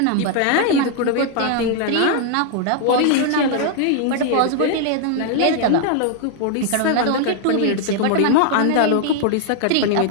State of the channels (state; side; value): different; both; correlation 0.00